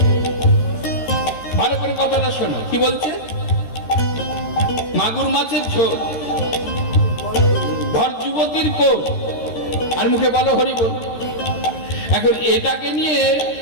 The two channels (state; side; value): late; right; 13 ms